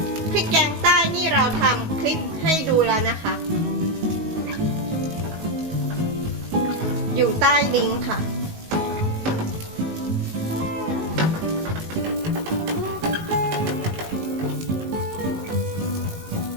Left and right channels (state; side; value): late; left; 19 ms